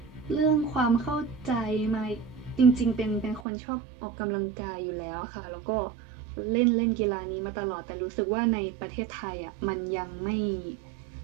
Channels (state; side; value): drops out; left; at 3.4 s